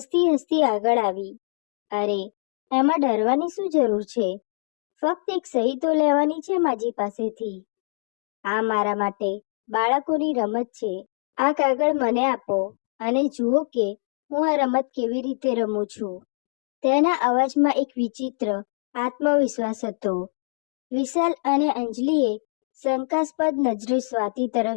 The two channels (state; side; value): silent; right; digital silence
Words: હસતી આગળ આવી. અરે, એમાં ડરવાની શું જરૂર છે? ફક્ત એક સહી તો લેવાની છે માજી પાસેથી. આ મારા માટે બાળકોની રમત છે. આ કાગળ મને આપો અને જુઓ કે હું આ રમત કેવી રીતે રમું છું. તેના અવાજમાં એક વિચિત્ર આત્મવિશ્વાસ હતો. વિશાલ અને અંજલિએ શંકાસ્પદ નજરે સ્વાતિ